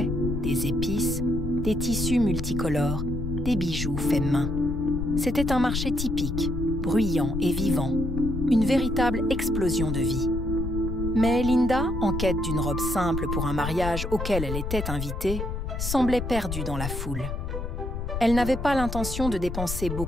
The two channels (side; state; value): left; noise; rumble, 4 dB below the sound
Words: des épices, des tissus multicolores, des bijoux faits main. C'était un marché typique, bruyant et vivant, une véritable explosion de vie. Mais Linda, en quête d'une robe simple pour un mariage auquel elle était invitée, semblait perdue dans la foule. Elle n'avait pas l'intention de dépenser